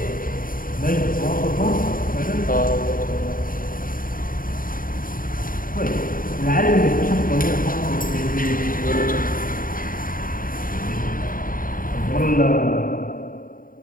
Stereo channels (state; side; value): late; right; 0.41 ms